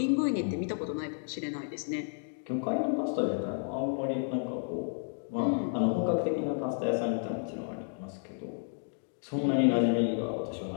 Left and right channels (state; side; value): silent; right; digital silence